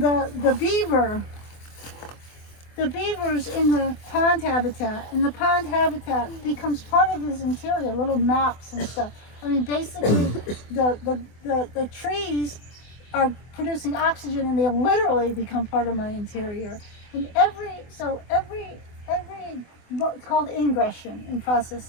beaver. The beaver's in the pond habitat, and the pond habitat becomes part of his interior, little maps and stuff. I mean, basically, the trees are producing oxygen, and they literally become part of my interior. And every it's called ingression in process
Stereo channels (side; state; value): right; late; 24 ms